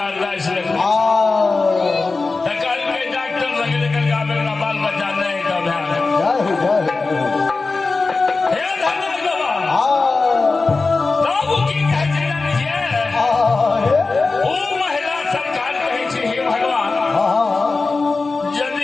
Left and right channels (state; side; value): quieter; right; 3.9 dB